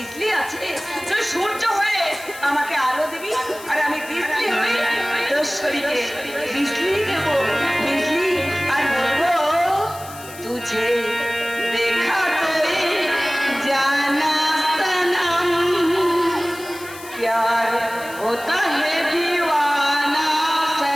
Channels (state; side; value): noise; left; hiss, 16 dB below the sound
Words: আছে। তুই সূর্য হয়ে আমাকে আলো দিবি আর আমি বিজলি হয়ে তোর শরীরে বিজলি দেব, বিজলি। আর বলবো तुझे देखा तो जाना सनम, प्यार होता है दीवाना